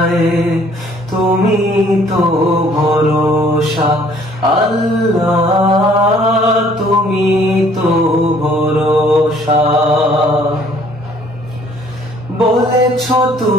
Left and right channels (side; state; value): both; normal; correlation 0.59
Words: তুমি তো ভরসা। আল্লাহ তুমি তো ভরসা। বলেছ